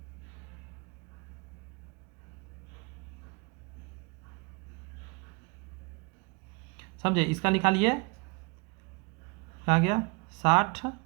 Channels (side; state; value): left; quieter; 29.6 dB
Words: समझे, इसका निकालिए, क्या गया 60,